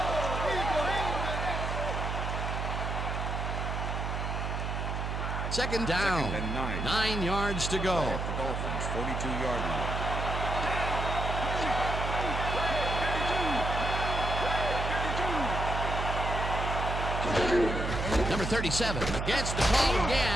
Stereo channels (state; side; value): noise; right; hum, 2 dB below the sound